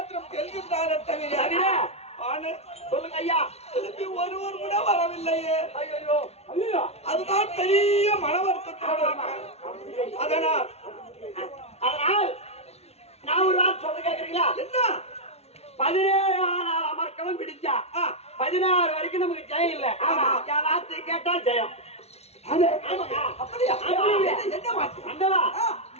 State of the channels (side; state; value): right; late; 0.31 ms